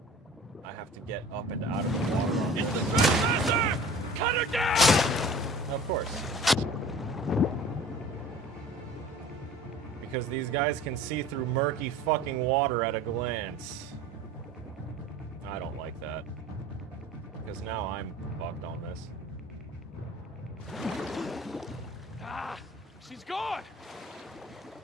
I have to get up and out of the water. It's the trespasser! Cut her down! Of course. Because these guys can see through murky fucking water at a glance. I don't like that. Because now I'm fucked on this. Ah! She's gone!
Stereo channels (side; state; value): both; normal; correlation 0.43